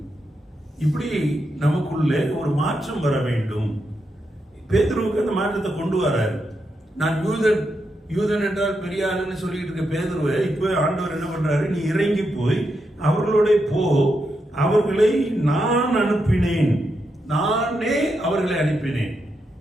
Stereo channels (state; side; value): normal; both; correlation 0.84